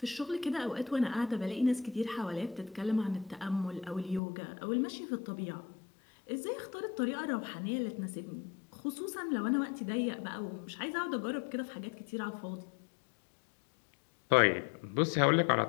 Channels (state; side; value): drops out; right; at 4.2 s